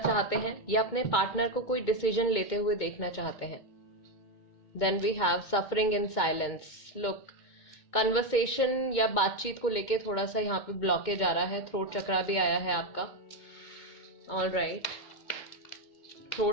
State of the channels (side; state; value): right; late; 2.2 ms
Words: हैं या अपने पार्टनर को कोई डिसीजन लेते हुए देखना चाहते हैं। Then we have suffering in silence. Look, conversation या बातचीत को लेके थोड़ा सा यहाँ पे ब्लॉकेज आ रहा है। थ्रोट चक्रा भी आया है आपका। ऑलराइट,